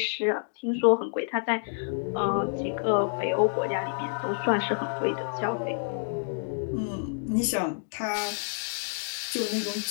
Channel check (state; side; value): silent; right; digital silence